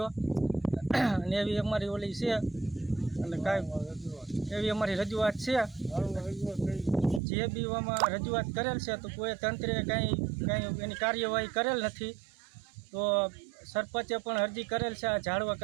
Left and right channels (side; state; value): left; drops out; at 7.2 s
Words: અને એવી અમારી ઓલી છે અને કાંઈ એવી અમારી રજૂઆત છે. જે બી આમાં રજૂઆત કરેલ છે તો કોઈ તંત્રે કાંઈ એની કાર્યવાહી કરેલ નથી. તો સરપંચે પણ અરજી કરેલ છે આ ઝાડવા